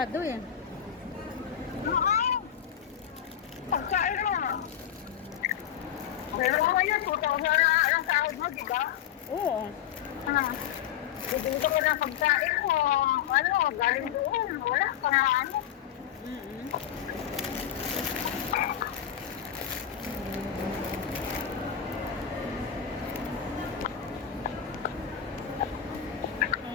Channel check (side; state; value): right; quieter; 9.6 dB